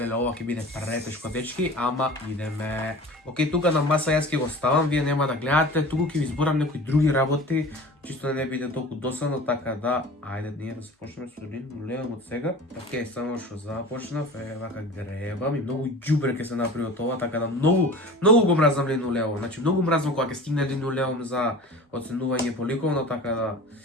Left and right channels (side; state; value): both; normal; correlation 0.39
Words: ова ќе биде претешко, дечки, ама идеме. Океј, тука на маса јас ќе го ставам, вие нема да гледате, туку ќе ви зборам некои други работи, чисто да не биде толку досадно, така да, ајде ние да започнеме со линолеумот сега. Океј, само што започнав, вака гребам и многу ѓубре ќе се направи од ова, така да многу го мразам линолеум. Значи многу мразам кога ќе стигне линолеум за оценување по ликовно, така да